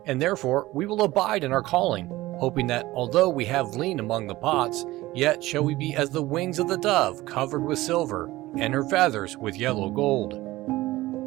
and therefore we will abide in our calling, hoping that although we have lien among the pots, yet shall we be as the wings of the dove covered with silver, and her feathers with yellow gold.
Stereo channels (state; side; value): quieter; left; 17.9 dB